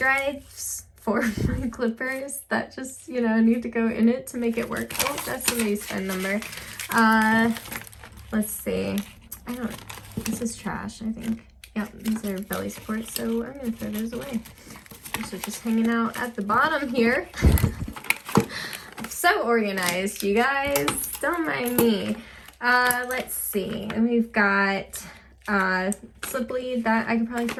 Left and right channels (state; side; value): identical; both; correlation 1.00